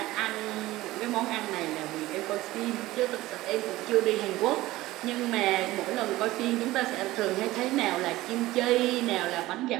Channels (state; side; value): quieter; left; 17.5 dB